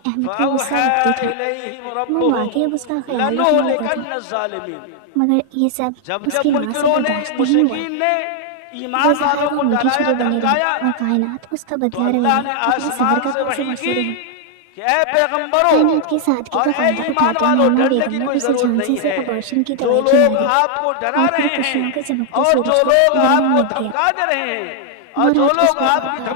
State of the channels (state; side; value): different; both; correlation 0.00